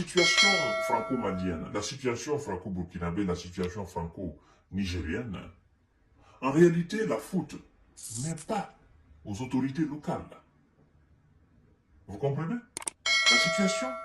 franco-malienne, la situation franco-burkinabé, la situation franco-nigérienne, en réalité, la faute n'est pas aux autorités locales. Vous comprenez? La situation,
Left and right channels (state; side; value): identical; both; correlation 1.00